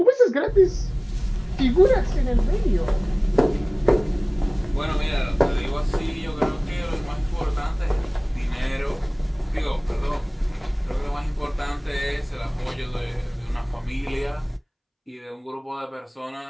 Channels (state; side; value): identical; both; correlation 1.00